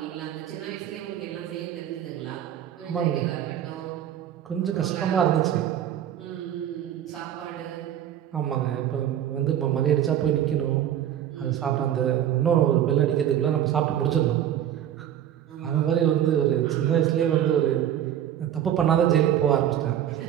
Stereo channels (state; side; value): quieter; left; 10.8 dB